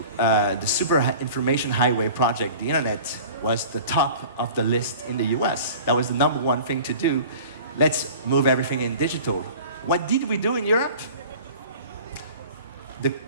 the Super Information Highway project, the internet, was the top of the list in the US. That was the #1 thing to do. Let's move everything in digital. What did we do in Europe? The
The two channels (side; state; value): both; inverted; correlation -0.42